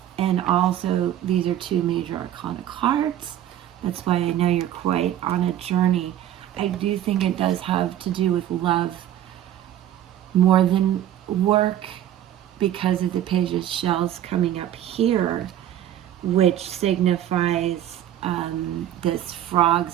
And also, these are 2 major arcana cards. That's why I know you're quite on a journey. I do think it does have to do with love more than work because of the Page of Shells coming up here, which signifies this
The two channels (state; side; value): quieter; left; 11.7 dB